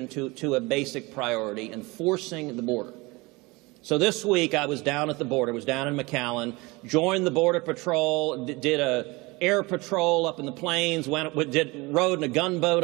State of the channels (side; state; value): left; quieter; 24.0 dB